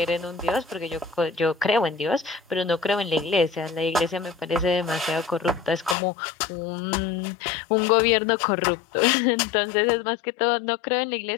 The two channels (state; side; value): drops out; right; at 6.0 s